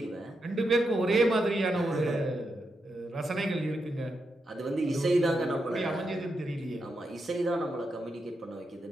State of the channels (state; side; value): normal; both; correlation 0.85